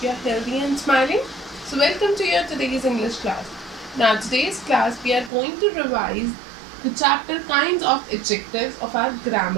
you are healthy and smiling. So, welcome to your today's English class. Now, today's class we are going to revise the chapter kinds of adjectives of our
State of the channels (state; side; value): drops out; left; at 5.3 s